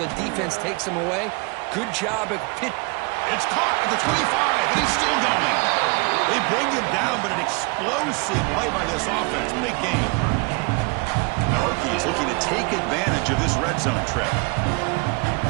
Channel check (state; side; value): quieter; left; 29.7 dB